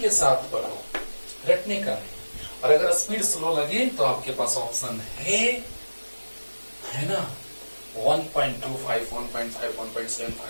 साथ पढ़ो, रटने का नहीं। और अगर स्पीड स्लो लगे तो आपके पास ऑप्शन है ना, 1.25, 1.5,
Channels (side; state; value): both; inverted; correlation -1.00